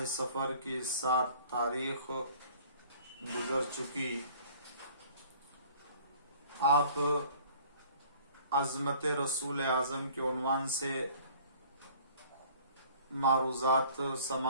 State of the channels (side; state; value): both; inverted; correlation -0.51